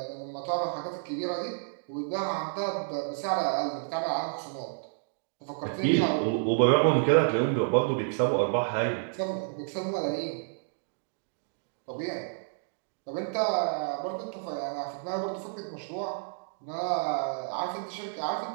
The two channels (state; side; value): silent; left; digital silence